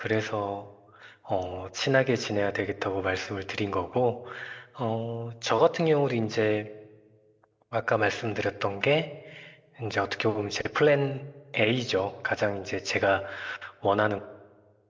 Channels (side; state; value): both; identical; correlation 1.00